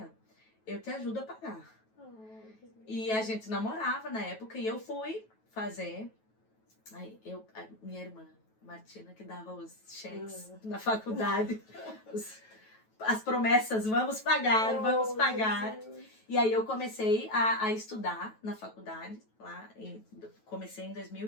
eu te ajudo a pagar. E a gente namorava na época e eu fui fazer. Aí a minha irmã, Martina, que dava os cheques na faculdade, as promessas, vamos pagar, vamos pagar. Jesus. E aí eu comecei a estudar na faculdade, comecei em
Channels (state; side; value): late; right; 9.2 ms